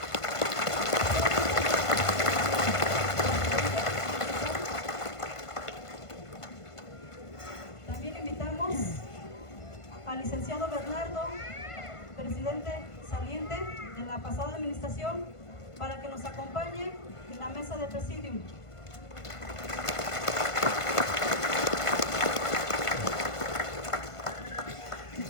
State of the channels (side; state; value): right; late; 1.5 ms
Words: También invitamos al licenciado Bernardo, presidente saliente de la pasada administración, para que nos acompañe en la mesa de presidium.